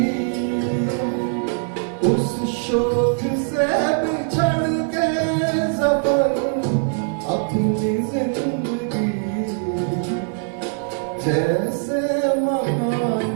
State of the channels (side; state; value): left; silent; 58 dB below the other